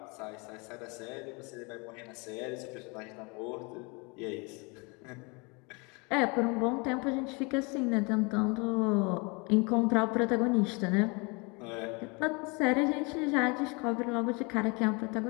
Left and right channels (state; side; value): quieter; right; 29.8 dB